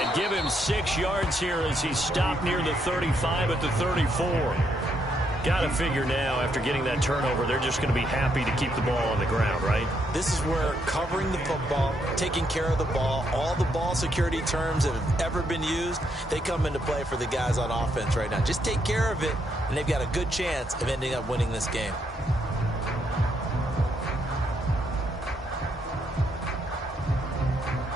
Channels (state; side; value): normal; both; correlation 0.76